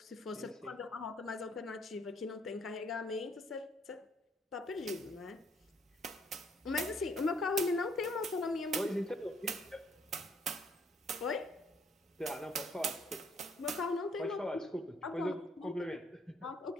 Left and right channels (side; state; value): both; normal; correlation 0.66